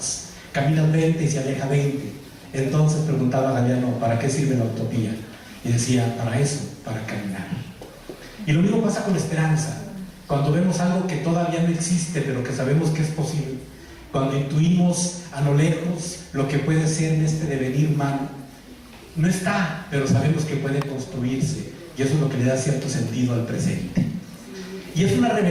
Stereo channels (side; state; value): both; identical; correlation 1.00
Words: Caminas 20 y se aleja 20. Entonces preguntaba Galeano, ¿para qué sirve la utopía? Y decía, para eso, para caminar. Y lo mismo pasa con la esperanza. Cuando vemos algo que todavía no existe, pero que sabemos que es posible, cuando intuimos a lo lejos lo que puede ser en este devenir humano, no está, pero sabemos que puede construirse, y eso es lo que le da cierto sentido al presente. Y es una